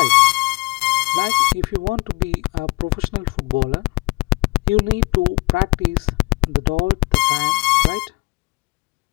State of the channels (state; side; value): quieter; right; 24.4 dB